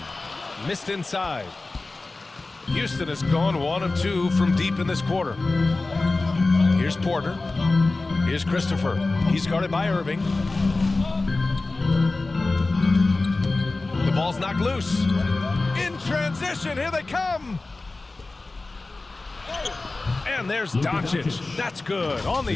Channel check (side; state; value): right; quieter; 3.3 dB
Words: Missed inside. Houston has gone 1 of 2 from deep in this quarter. Here's Porter. Here's Christopher. He's guarded by Irving. The ball Ball's knocked loose. In transition, here they come. And there's Doncic. That's good. On